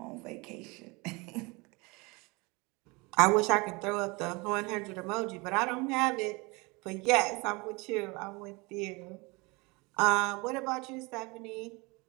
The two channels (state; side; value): quieter; left; 26.5 dB